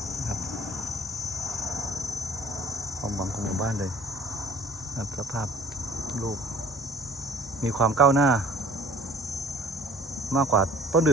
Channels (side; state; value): both; normal; correlation 0.52